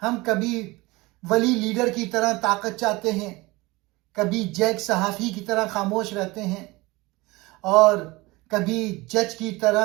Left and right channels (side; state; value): left; quieter; 22.1 dB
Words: ہم کبھی ولی لیڈر کی طرح طاقت چاہتے ہیں، کبھی جیک صحافی کی طرح خاموش رہتے ہیں، اور کبھی جج کی